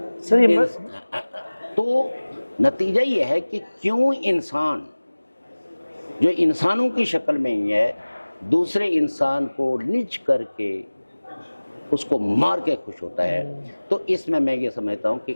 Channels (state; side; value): inverted; both; correlation -1.00